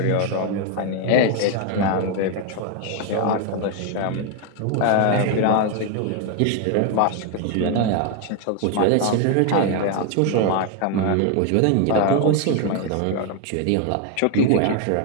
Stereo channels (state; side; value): different; both; correlation 0.01